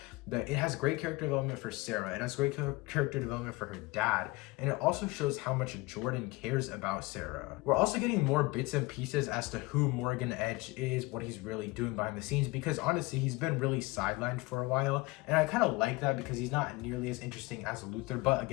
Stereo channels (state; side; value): quieter; right; 22.6 dB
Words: It has great character development for Sarah. It has great character development for her dad. And it also shows how much Jordan cares about Sarah. We're also getting more bits and pieces as to who Morgan Edge is, what he's really doing behind the scenes, because honestly, he's been really sidelined for a while. And I kind of like that because he's not nearly as interesting as Luthor. But